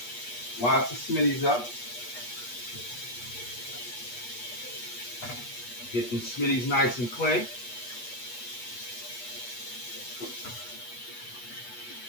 Wash the smitties up. Get them smitties nice and clean.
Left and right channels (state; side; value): late; right; 8.3 ms